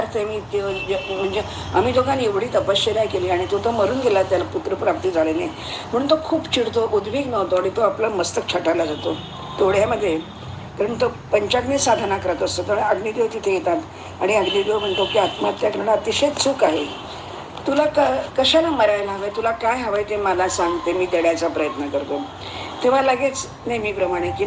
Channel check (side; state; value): both; identical; correlation 1.00